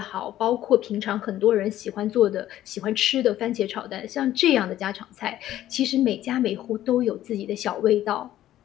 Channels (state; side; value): quieter; right; 13.2 dB